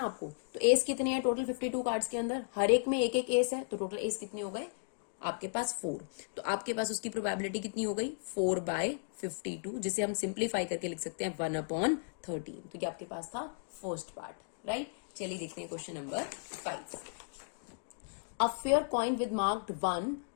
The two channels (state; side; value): silent; right; digital silence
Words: आपको, तो एस कितने हैं टोटल 52 कार्ड्स के अंदर, हर एक में एक एक एस है, तो टोटल एस कितने हो गए आपके पास 4। तो आपके पास उसकी प्रोबेबिलिटी कितनी हो गई 4/52, जिसे हम सिंप्लीफाई करके लिख सकते हैं 1/13। तो ये आपके पास था फर्स्ट पार्ट, राइट। चलिए देखते हैं question number 5। A fair coin with marked 1